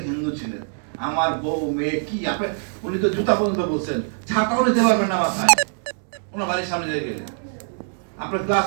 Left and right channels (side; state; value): left; silent; digital silence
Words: হিন্দু ছিলেন। আমার বউ মেয়ে কি, আপনি উনি তো জুতা পর্যন্ত বলছেন, ছাতাও নিতে পারবেন না মাথায় ওনার বাড়ির সামনে দিয়ে গেলে। আপনি